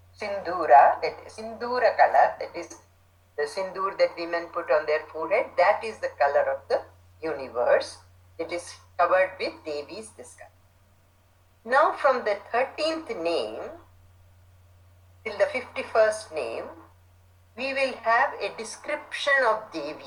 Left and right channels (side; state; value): both; identical; correlation 1.00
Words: Sindura, that is Sindura color, that is the sindur that women put on their forehead. That is the color of the universe. It is covered with Devi's this color. Now from the 13th name till the 51st name, we will have a description of